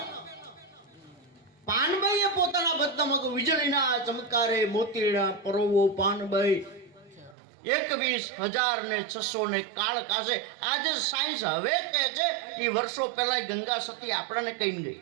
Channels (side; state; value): left; drops out; at 7.4 s